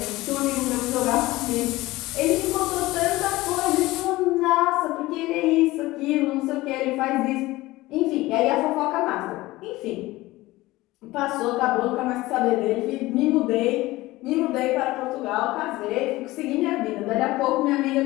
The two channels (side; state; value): right; quieter; 18.9 dB